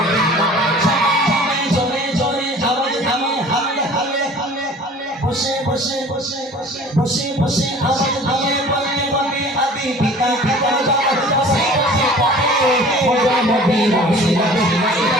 চলে চলে আওয়াজ আমি হালে হালে হালে বসে বসে বসে বসে বসে বসে আওয়াজ আমি বলতে বলতে আদি পিতা পিতা বসে বসে মোদের নবী রসিলাতে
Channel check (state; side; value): normal; both; correlation 0.46